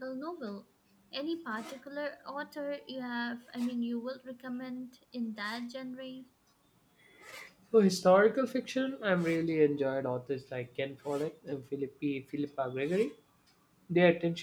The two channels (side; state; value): both; identical; correlation 1.00